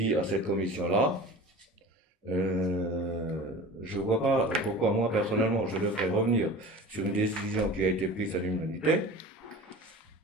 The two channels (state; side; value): normal; both; correlation 0.37